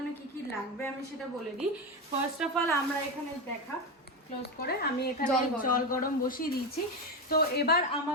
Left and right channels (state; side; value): normal; both; correlation 0.15